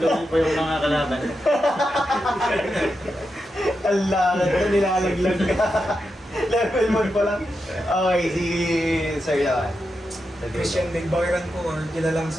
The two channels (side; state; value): both; normal; correlation 0.87